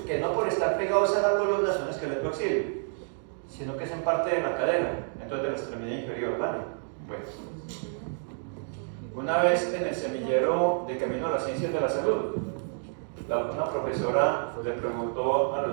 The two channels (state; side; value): silent; left; digital silence